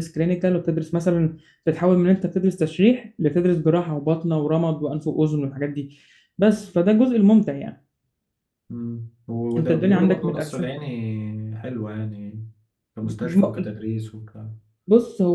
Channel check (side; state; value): both; identical; correlation 1.00